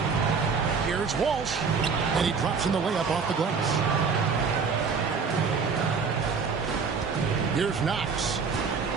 Here's Walsh. And he drops in the layup off the glass. Here's Knox.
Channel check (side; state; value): left; quieter; 5.4 dB